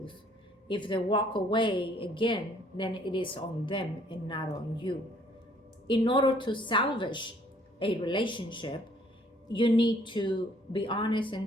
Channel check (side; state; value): both; normal; correlation 0.61